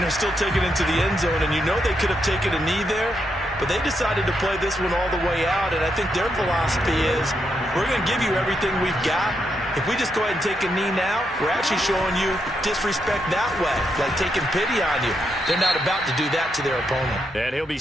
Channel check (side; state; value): both; normal; correlation 0.81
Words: they're still taking it to the end zone. And you know they could have taken a knee there, but they decided to play this one all the way out. And I think their philosophy is, we're going to give you everything we've got. If we just go ahead and take a knee now, we're actually showing you disrespect that way, like taking pity on you. They're not about to do that to their opponent. And he'll be